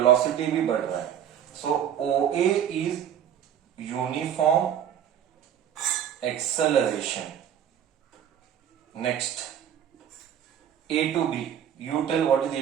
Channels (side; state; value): left; quieter; 9.6 dB